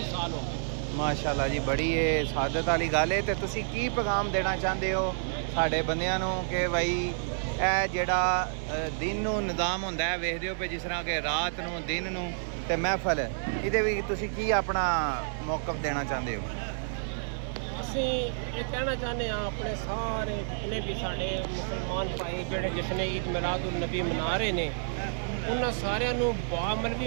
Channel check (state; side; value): silent; left; digital silence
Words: ਸਾਲ ਹੋ ਗਏ। ਮਾਸ਼ਾਅੱਲਾ ਜੀ ਬੜੀ ਇਹ ਸਾਦਤ ਵਾਲੀ ਗੱਲ ਹੈ। ਤੇ ਤੁਸੀਂ ਕੀ ਪੈਗਾਮ ਦੇਣਾ ਚਾਹੁੰਦੇ ਹੋ ਸਾਡੇ ਬੰਦਿਆਂ ਨੂੰ ਕਿ ਭਾਈ ਇਹ ਜਿਹੜਾ ਦਿਨ ਨੂੰ ਨਿਜ਼ਾਮ ਹੁੰਦਾ ਹੈ ਵੇਖਦੇ ਹੋ ਪਏ ਜਿਸ ਤਰ੍ਹਾਂ ਕਿ ਰਾਤ ਨੂੰ ਦਿਨ ਨੂੰ ਤੇ ਮਹਿਫਲ ਇਹਦੇ ਵੀ ਤੁਸੀਂ ਕੀ ਆਪਣਾ ਮੌਕਫ ਦੇਣਾ ਚਾਹੁੰਦੇ ਹੋ? ਅਸੀਂ ਇਹ ਕਹਿਣਾ ਚਾਹੁੰਦੇ ਹਾਂ ਆਪਣੇ ਸਾਰੇ ਜਿੰਨੇ ਵੀ ਸਾਡੇ ਮੁਸਲਮਾਨ ਭਾਈ ਜਿਹੜੇ ਜਸ਼ਨ ਈਦ ਮਿਲਾਦੁਨ ਨਬੀ ਮਨਾ ਰਹੇ ਨੇ ਉਹਨਾਂ ਸਾਰਿਆਂ ਨੂੰ ਬਾਅਮਲ